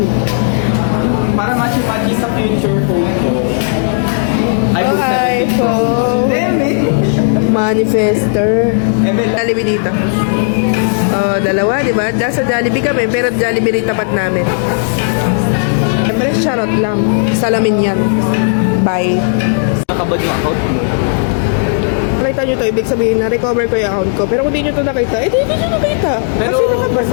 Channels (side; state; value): right; silent; digital silence